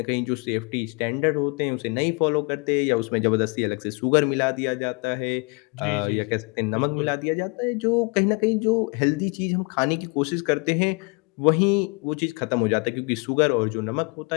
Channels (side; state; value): right; quieter; 31.6 dB